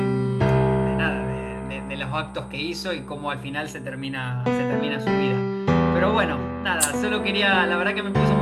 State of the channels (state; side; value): identical; both; correlation 1.00